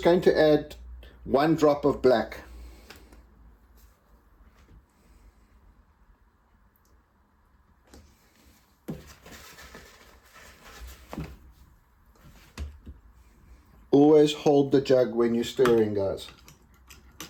going to add 1 drop of black. Always hold the jug when you're stirring, guys.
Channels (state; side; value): identical; both; correlation 1.00